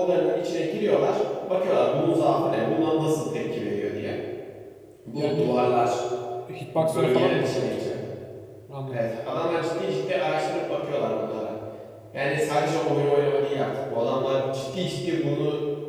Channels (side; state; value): both; identical; correlation 1.00